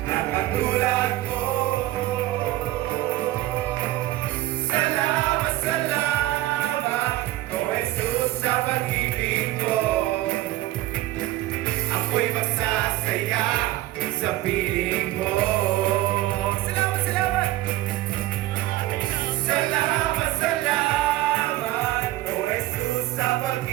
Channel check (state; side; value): quieter; left; 16.1 dB